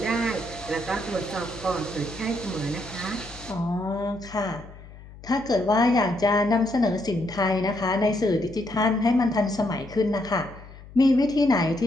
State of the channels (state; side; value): noise; left; hum, 18 dB below the sound